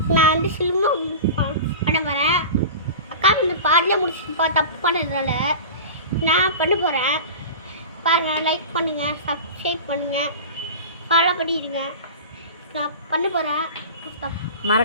நான் வந்து சில்வம் பண்ண போகிறேன். அக்கா வந்து பாதிலே முடிச்சுப்பா தப்பு பண்ணதுனால நான் பண்ண போகிறேன். பாருங்கள், லைக் பண்ணுங்கள், சப்ஸ்கிரைப் பண்ணுங்கள், ஃபாலோ பண்ணிடுங்க. நான் பண்ண போகிறேன்.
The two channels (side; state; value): both; inverted; correlation -0.32